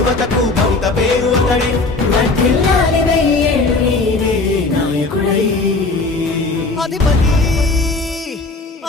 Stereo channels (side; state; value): right; quieter; 3.5 dB